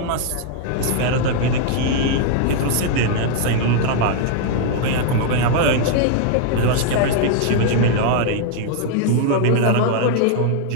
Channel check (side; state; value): both; different; correlation 0.00